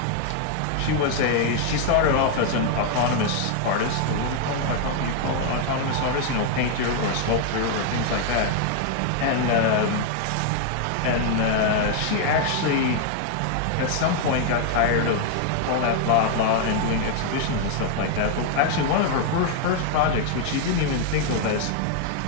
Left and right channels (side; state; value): both; different; correlation 0.00